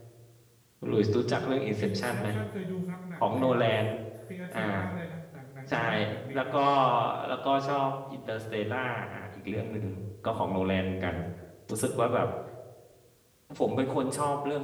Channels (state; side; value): identical; both; correlation 1.00